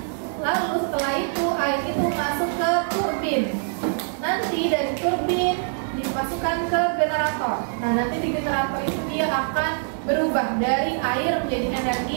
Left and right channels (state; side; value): silent; left; 63 dB below the other